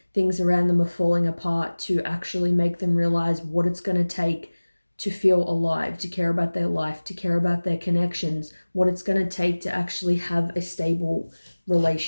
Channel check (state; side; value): inverted; both; correlation -1.00